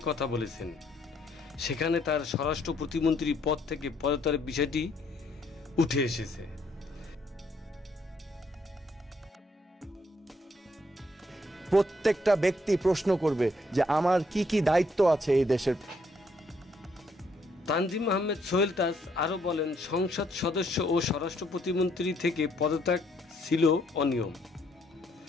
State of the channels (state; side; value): normal; both; correlation 0.70